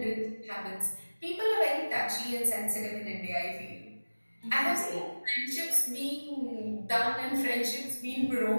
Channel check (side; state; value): both; inverted; correlation -1.00